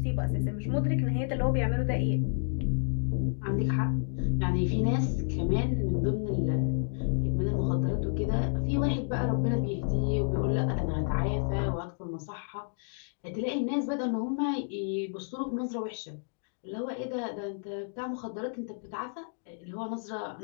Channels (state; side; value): silent; right; digital silence